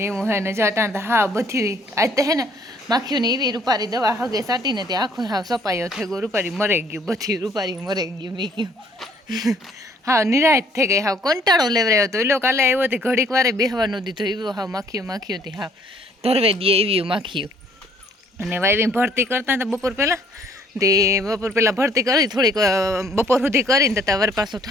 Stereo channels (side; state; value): both; normal; correlation 0.61